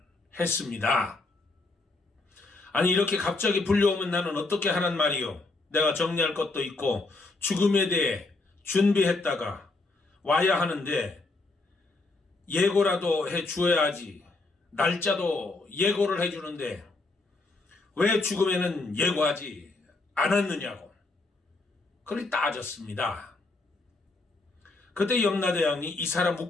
했습니다. 아니, 이렇게 갑자기 불려오면 나는 어떻게 하란 말이요? 내가 정리할 것도 있고 죽음에 대해 준비했다가 와야 하는데 예고라도 해 주어야지. 날짜도 예고를 해 주는데 왜 죽음에는 예고하지 않았느냐고 그리 따졌습니다. 그때 염라대왕이 이 사람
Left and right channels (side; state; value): right; quieter; 3.3 dB